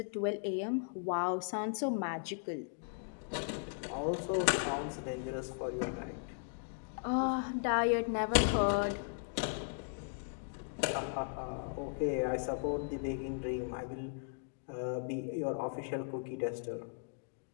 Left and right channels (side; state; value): right; silent; digital silence